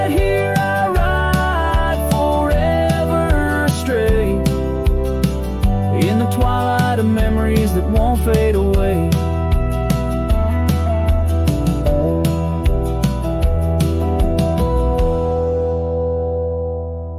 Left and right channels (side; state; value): both; identical; correlation 1.00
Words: here I ride forever astray, in the twilight of memories that won't fade away.